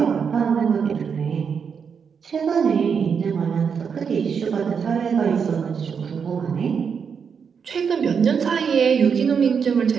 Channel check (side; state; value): left; quieter; 6.5 dB